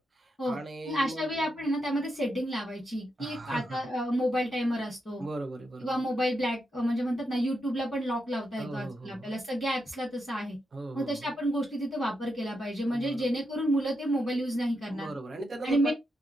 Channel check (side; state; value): both; normal; correlation 0.84